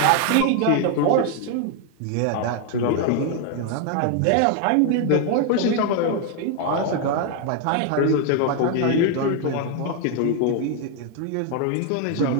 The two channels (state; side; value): different; both; correlation 0.00